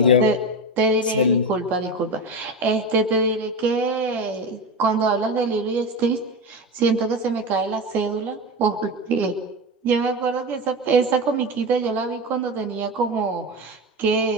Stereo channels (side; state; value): both; normal; correlation 0.21